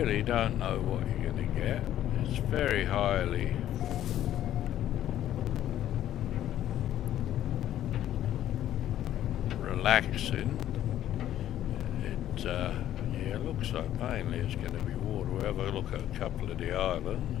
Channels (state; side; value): quieter; right; 12.1 dB